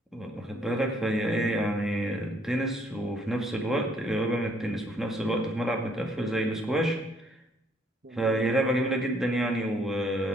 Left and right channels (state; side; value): normal; both; correlation 0.65